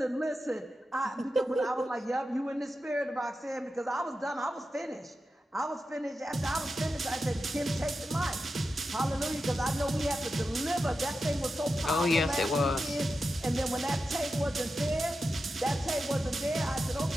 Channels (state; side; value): normal; both; correlation 0.91